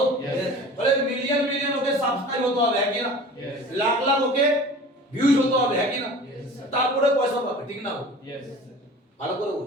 Yes. বলে মিলিয়ন মিলিয়ন ওকে সাবস্ক্রাইব হতে হবে, হ্যাঁ কি না? Yes. লাখ লাখ ওকে ভিউজ হতে হবে, হ্যাঁ কি না? Yes. তারপরে পয়সা পাবে, ঠিক না? Yes. ভালো করে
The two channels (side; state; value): both; normal; correlation 0.40